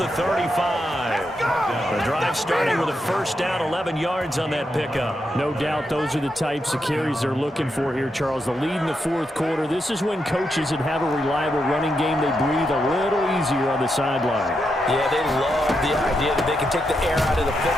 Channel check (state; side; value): normal; both; correlation 0.83